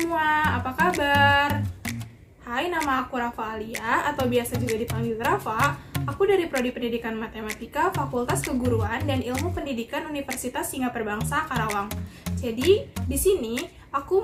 apa kabar? Hai, nama aku Rafa Alia atau biasa juga dipanggil Rafa. Aku dari Prodi Pendidikan Matematika, Fakultas Keguruan dan Ilmu Pendidikan Universitas Singapura Bangsa, Karawang. Jadi, di sini aku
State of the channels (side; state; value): both; identical; correlation 1.00